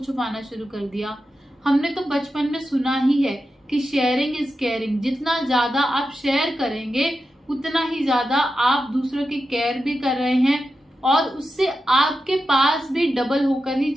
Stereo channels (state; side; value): normal; both; correlation 0.90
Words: शुरू कर दिया। हमने तो बचपन में सुना ही है कि शेयरिंग इज केयरिंग। जितना ज्यादा आप शेयर करेंगे उतना ही ज्यादा आप दूसरों की केयर भी कर रहे हैं, और उससे आपके पास भी डबल होकर ही